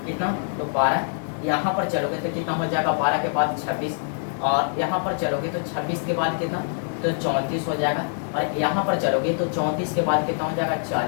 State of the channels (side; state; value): right; silent; digital silence